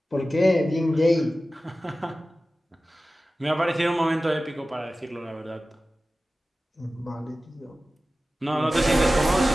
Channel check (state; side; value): normal; both; correlation 0.95